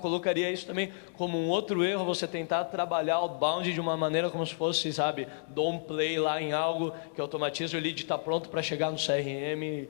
isso também como um outro erro, você tentar trabalhar outbound de uma maneira como se fosse, sabe, dom play lá em algo que automatiza, o lead está pronto para chegar no CRM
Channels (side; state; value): right; silent; digital silence